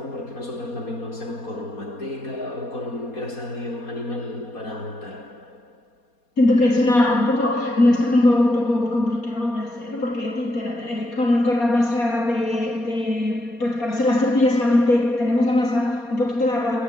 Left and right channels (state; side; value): late; right; 4.2 ms